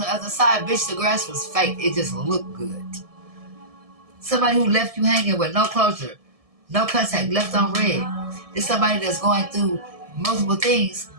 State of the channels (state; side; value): late; left; 1.7 ms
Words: other side. Bitch, the grass was fake. It just looked good. Somebody who left you hanging with no closure, no contact, left on red. It's somebody that's going through multiple things